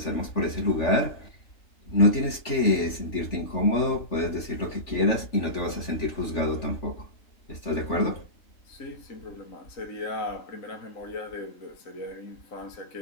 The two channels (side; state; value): right; late; 3.4 ms